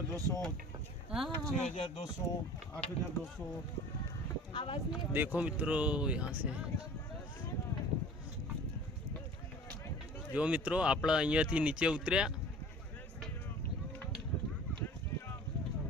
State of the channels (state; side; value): normal; both; correlation 0.44